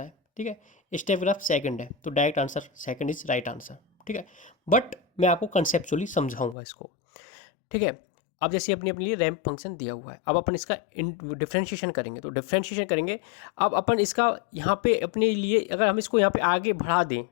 ठीक है, स्टेप ग्राफ सेकंड है, तो direct answer second is right answer. ठीक है, बट मैं आपको कंसेप्चुअली समझाऊंगा इसको। ठीक है, अब जैसे अपनी अपने लिए रैंप फंक्शन दिया हुआ है, अब अपन इसका डिफ्रेंशिएशन करेंगे, तो डिफ्रेंशिएशन करेंगे। अब अपन इसका यहाँ पे अपने लिए अगर हम इसको यहाँ पे आगे बढ़ा दें,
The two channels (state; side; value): drops out; right; at 6.6 s